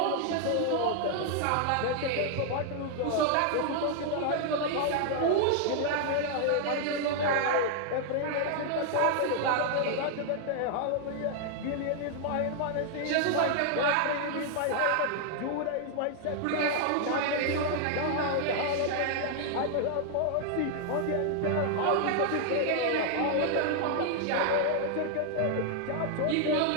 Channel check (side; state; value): both; different; correlation 0.00